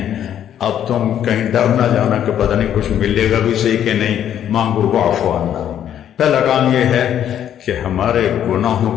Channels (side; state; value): right; quieter; 10.2 dB